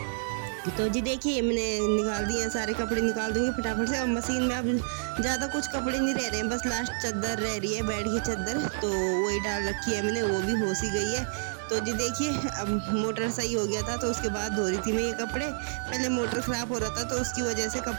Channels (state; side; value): silent; left; digital silence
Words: तो जी देखिए, मैंने निकाल दिए हैं सारे कपड़े, निकाल दूंगी फटाफट से। और मशीन में अब ज़्यादा कुछ कपड़े नहीं रह रहे हैं, बस लास्ट चादर रह रही है, बेड की चादर, तो वही डाल रखी है मैंने, वो भी हो सी गई है। तो जी देखिए, अब मोटर सही हो गया था तो उसके बाद धो रही थी मैं ये कपड़े। पहले मोटर ख़राब हो रहा था तो उसकी वजह से